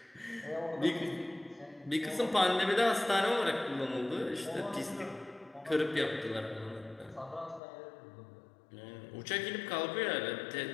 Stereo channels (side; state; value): right; drops out; at 7.6 s